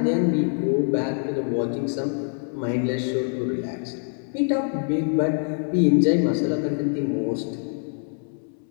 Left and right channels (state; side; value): silent; right; 56 dB below the other